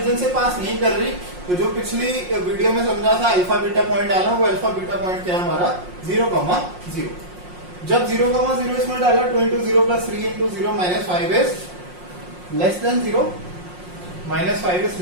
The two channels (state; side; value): late; left; 5.6 ms